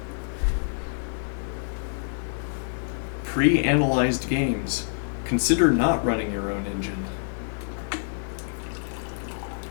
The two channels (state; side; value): silent; right; 60 dB below the other